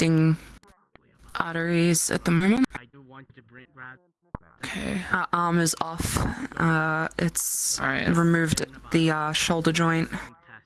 arteries at the moment. I do want to bring rat. Okay. Arm is off. It's Alright. removed the shoulder joint. Test.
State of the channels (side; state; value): both; identical; correlation 1.00